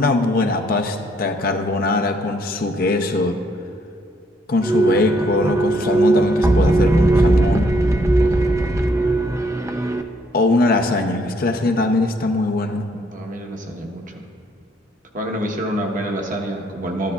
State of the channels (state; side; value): normal; both; correlation 0.68